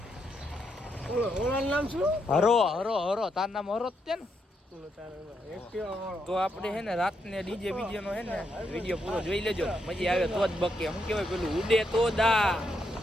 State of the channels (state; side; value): normal; both; correlation 0.79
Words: નામ શું? હરો તાર નામ હરો જ છે ને. તો આપણે હે ને રાતને ડીજે બીજે નો હે ને વિડીયો પૂરો જોઈ લેજો, મજા આવે તો જ બકે. શું કહેવાય પેલું ઉડે તો દા.